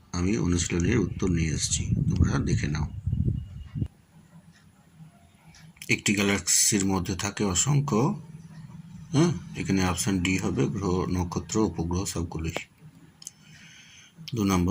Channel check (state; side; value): identical; both; correlation 1.00